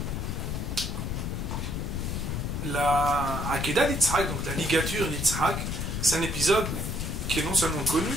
la Akedah d'Yitzhak, donc la ligature d'Yitzhak, c'est un épisode qui est non seulement connu,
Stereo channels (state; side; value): noise; left; rumble, 2 dB below the sound